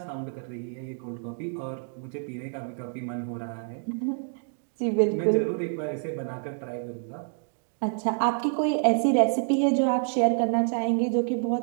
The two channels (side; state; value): left; silent; 60 dB below the other